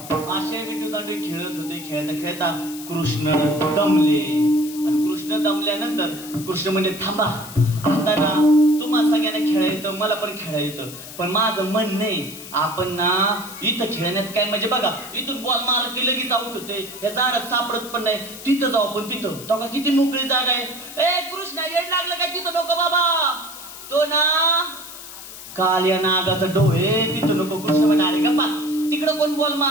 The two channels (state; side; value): noise; left; hiss, 14 dB below the sound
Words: असे विटू दांडू खेळत होते. खेळता खेळता कृष्ण दमले. आणि कृष्ण दमल्यानंतर कृष्ण म्हणे थांबा, आता ना तुम्हा सगळ्यांना खेळायचं, मला पण खेळायचं, पण माझं मन नाही. आपण ना इथं खेळण्यात काय म्हणजे बघा, इथून बॉल मारला की लगेच आउट होते. या झाडात सापडत पण नाही. तिथं जाऊ आपण, तिथं तेव्हा किती मोकळी जागा आहे. ए कृष्णा, येड लागलं काय? तिथं नको बाबा, तो ना काल्या नागाचं डोळे, तिथं नको. कृष्ण म्हणाले गप्पा, तिकडं कोण बॉल